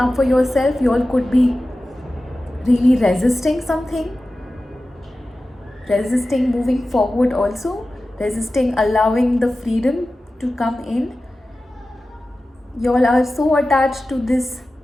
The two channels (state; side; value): normal; both; correlation 0.95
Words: for yourself. You all could be really resisting something, resisting moving forward, also resisting allowing the freedom to come in. You all are so attached to this